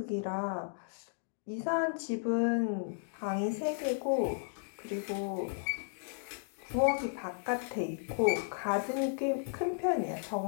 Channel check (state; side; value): silent; right; digital silence